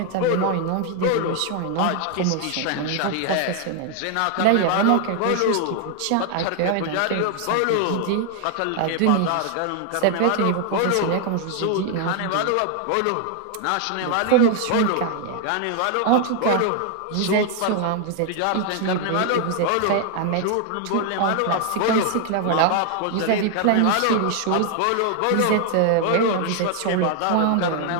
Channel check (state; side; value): different; both; correlation 0.00